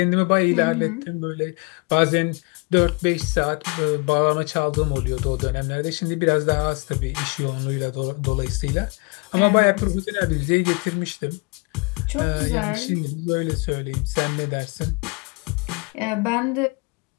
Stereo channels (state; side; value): quieter; right; 30.5 dB